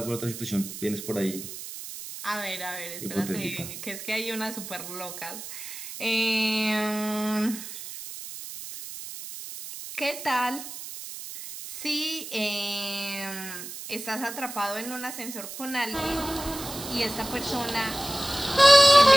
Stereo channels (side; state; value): right; noise; hiss, 10 dB below the sound